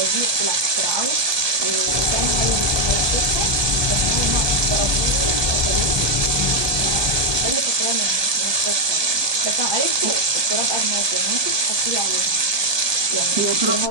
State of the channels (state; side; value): late; left; 1.2 ms